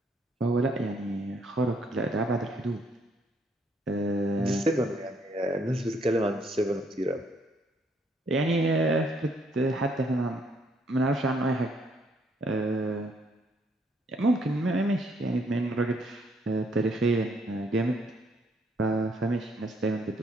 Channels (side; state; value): both; normal; correlation 0.69